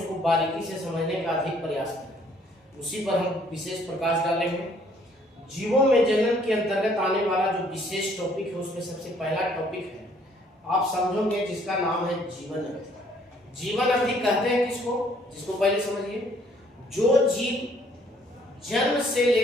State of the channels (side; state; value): both; normal; correlation 0.62